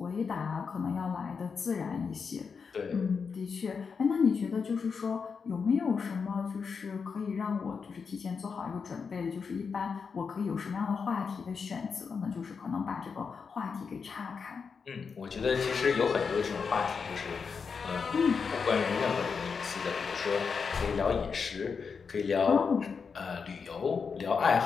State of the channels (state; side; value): quieter; right; 5.6 dB